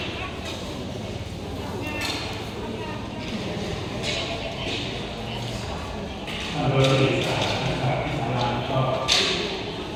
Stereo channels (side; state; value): both; identical; correlation 1.00